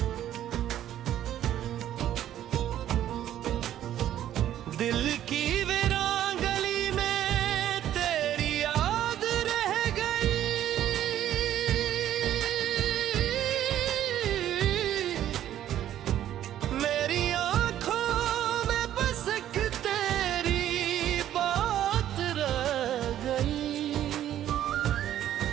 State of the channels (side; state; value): left; quieter; 11.7 dB